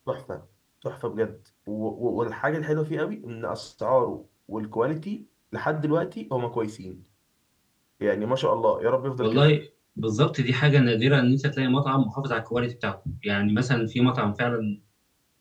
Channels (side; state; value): both; identical; correlation 1.00